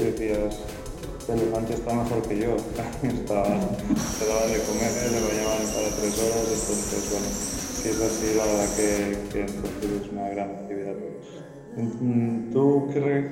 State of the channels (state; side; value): identical; both; correlation 1.00